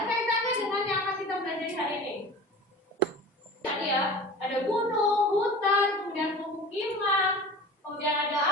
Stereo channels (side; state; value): both; normal; correlation 0.37